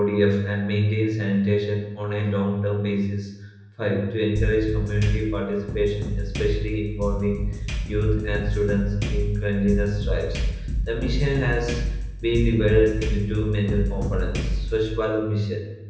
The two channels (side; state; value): both; identical; correlation 1.00